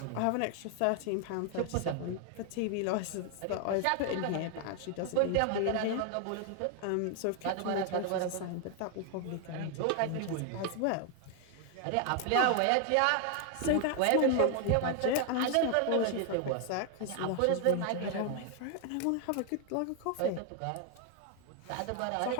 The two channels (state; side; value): different; both; correlation 0.00